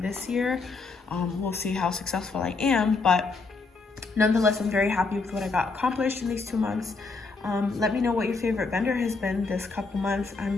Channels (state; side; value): quieter; right; 4.1 dB